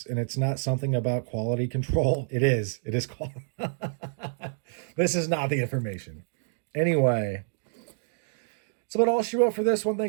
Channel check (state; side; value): silent; left; digital silence